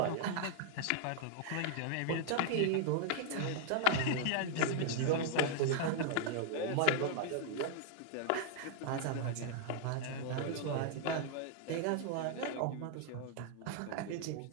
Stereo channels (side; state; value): both; different; correlation 0.00